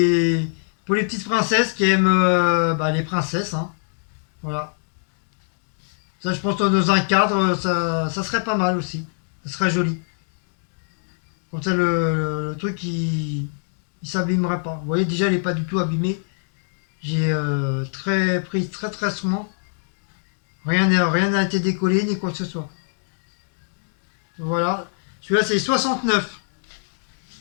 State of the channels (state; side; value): silent; right; digital silence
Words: petites princesses qui aiment les princesses. Hein. Voilà. Ça, je pense que dans un cadre, ça serait pas mal aussi. Ça serait joli. Comme ça, le truc, il s'abîmerait pas. Vous voyez, déjà, il n'est pas du tout abîmé. J'ai pris très souvent. Rien n'a été décollé, ni quoi que ce soit. Voilà. Celui-là, c'est 69.